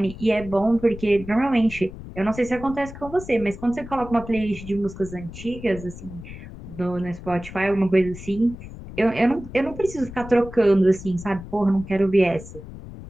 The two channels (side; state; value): left; noise; rumble, 14 dB below the sound